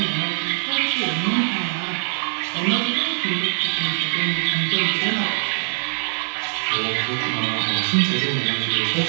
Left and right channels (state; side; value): silent; left; 64 dB below the other